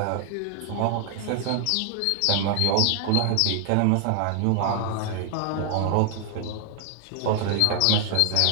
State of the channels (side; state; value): both; different; correlation 0.00